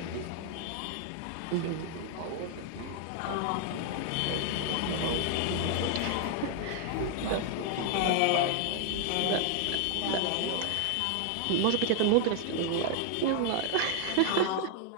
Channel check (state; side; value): different; both; correlation 0.00